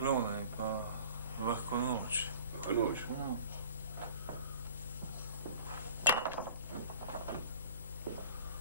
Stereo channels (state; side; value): inverted; both; correlation -0.46